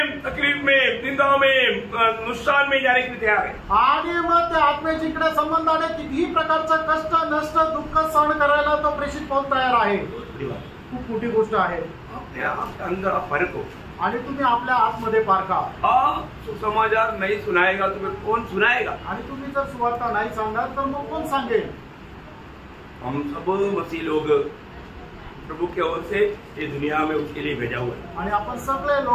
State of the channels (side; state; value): both; identical; correlation 1.00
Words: तकलीफ में, निंदा में, नुकसान में जाने के लिए तैयार है. आणि मग त्या आत्म्याच्या इकडे संबंधाने कितीही प्रकारचं कष्ट, नष्ट, दुःख सहन करायला तो प्रेषित पाऊल तयार आहे. खूप मोठी गोष्ट आहे. अपने आप के अंदर आप फर्क हो. आणि तुम्ही आपल्या आतमध्ये पारखा. आप सुसमाचार नहीं सुनाएगा तुम्हें कौन सुनाएगा? आणि तुम्ही जर सुवार्ता नाही सांगणार तर मग कोण सांगेल? हम सब मसीह लोग प्रभु की ओर से ये दुनिया में उसके लिए भेजा हुआ है. आणि आपण सगळे